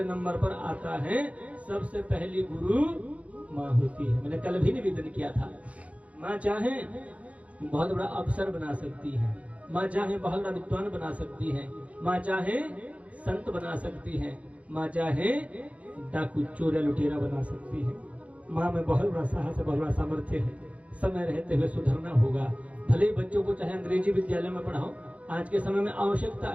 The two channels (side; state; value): left; late; 0.066 ms